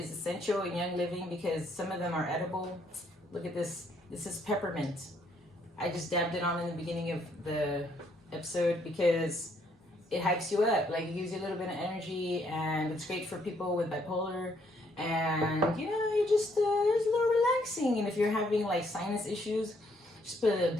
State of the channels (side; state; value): both; normal; correlation 0.69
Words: Essential and Young Living because some of them are edible. Look at this. This is peppermint. I just dabbed it on in the beginning of the episode because it hypes you up. Like, it gives you a little bit of energy, and it's great for people with bipolar. And, you know, you just, it's a little relaxing. And if you're having, like, sinus issues, just put a little